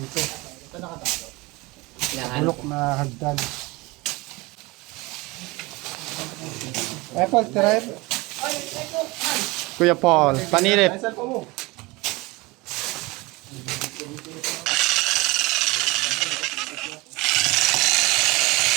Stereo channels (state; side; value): quieter; left; 23.5 dB